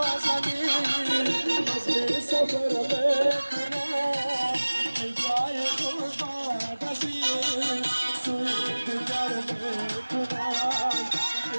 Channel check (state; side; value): inverted; both; correlation -1.00